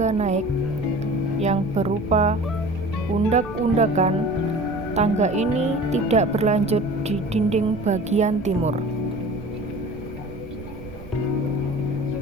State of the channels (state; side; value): noise; right; rumble, 14 dB below the sound